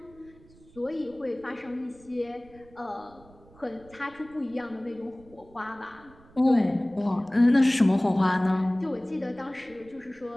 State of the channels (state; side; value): noise; right; rumble, 25 dB below the sound